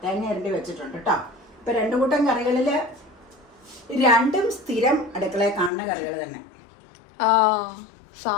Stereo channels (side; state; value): right; drops out; at 5.7 s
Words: തേങ്ങ ഇരണ്ടി വെച്ചിട്ടുണ്ട് കേട്ടോ. ഇപ്പൊ 2 കൂട്ടം കറികളില് 2ഉം സ്ഥിരം അടുക്കളയിൽ കാണുന്ന കറികൾ തന്നെ.